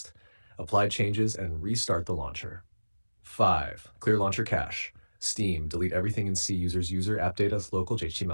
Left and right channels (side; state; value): both; inverted; correlation -1.00